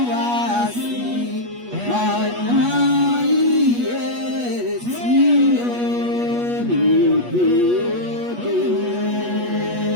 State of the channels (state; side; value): late; left; 8.3 ms